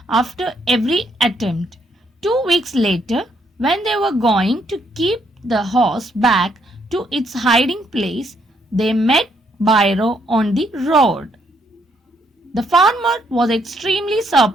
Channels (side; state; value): both; normal; correlation 0.72